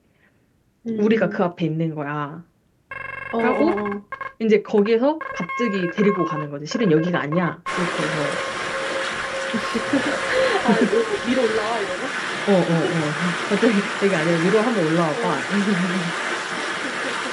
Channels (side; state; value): both; identical; correlation 1.00